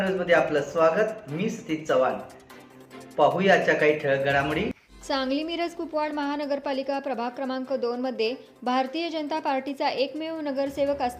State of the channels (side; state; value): both; identical; correlation 1.00